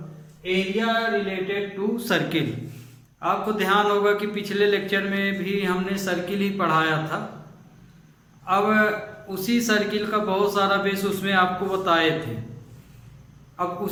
area related to circle. आपको ध्यान होगा कि पिछले लेक्चर में भी हमने सर्किल ही पढ़ाया था। अब उसी सर्किल का बहुत सारा बेस उसमें आपको बताए थे। अब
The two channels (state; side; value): identical; both; correlation 1.00